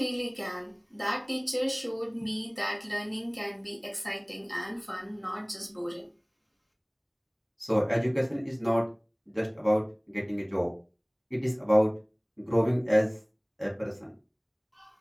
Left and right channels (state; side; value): identical; both; correlation 1.00